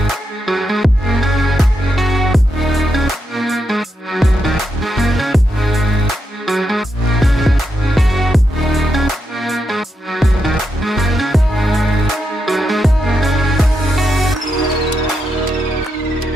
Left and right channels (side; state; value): both; normal; correlation 0.84